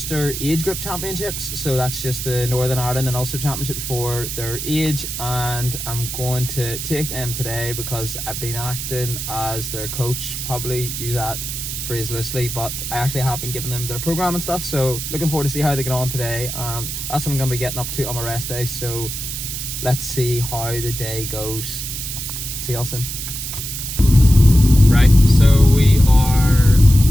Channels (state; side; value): noise; right; hiss, 6 dB below the sound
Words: age group championships. So that's just the Northern Ireland and Ulster championships for their age, and I'm going to take them today because I've been acting as their coach. Probably use that phrase loosely, but I actually have been giving them their program and stuff, so looking forward to see how they get on today, and that's what I'm going to be getting up to on my rest day. So let's see how the day goes. See y'all soon. Right, so we are